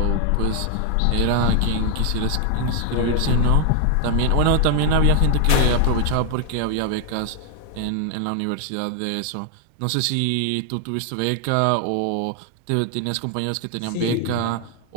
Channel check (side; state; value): both; different; correlation 0.00